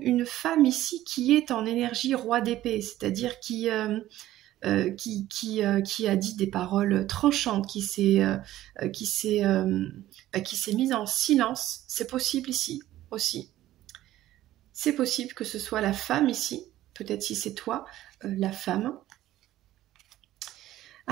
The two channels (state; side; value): quieter; left; 14.3 dB